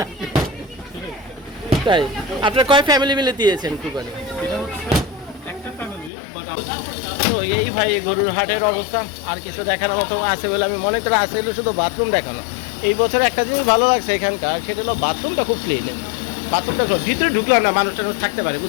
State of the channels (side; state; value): right; drops out; at 6.1 s